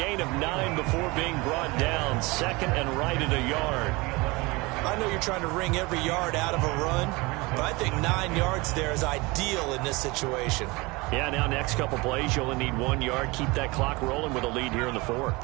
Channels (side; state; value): left; quieter; 24.2 dB